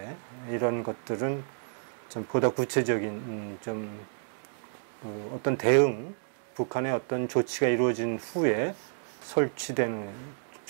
이런 것들은 좀 보다 구체적인 어떤 대응, 북한의 어떤 조치가 이루어진 후에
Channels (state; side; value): silent; left; digital silence